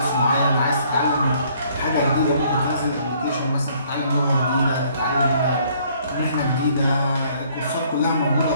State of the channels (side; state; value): both; inverted; correlation -0.62